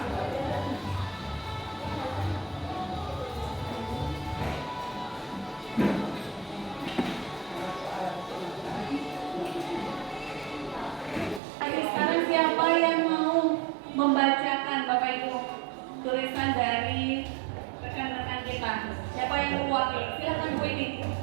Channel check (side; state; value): left; drops out; at 11.4 s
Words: Siapa yang mau membacakan Bapak Ibu tulisan dari rekan-rekan kita? Siapa yang mewakili? Silakan Bu Ini.